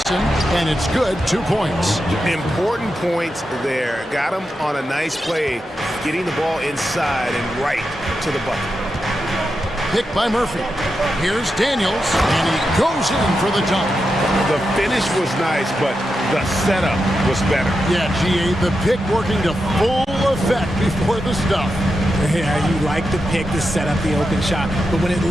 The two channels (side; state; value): both; normal; correlation 0.88